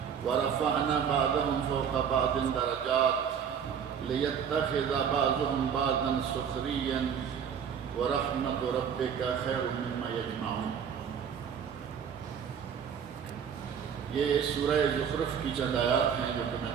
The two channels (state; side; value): quieter; left; 7.6 dB